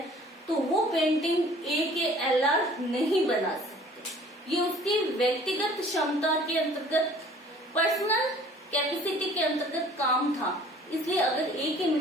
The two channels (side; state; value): both; normal; correlation 0.52